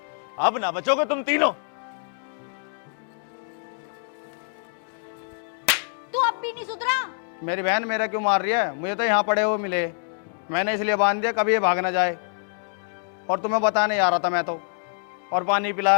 अब ना बचोगे तुम तीनों। तू अब भी नहीं सुधरा? मेरी बहन मेरा क्यों मार रही है? मुझे तो यहाँ पड़े हुए मिले, मैंने इसलिए बांध दिया कभी ये भाग ना जाए। और तुम्हें बताने आ रहा था मैं तो, और पानी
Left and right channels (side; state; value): right; silent; digital silence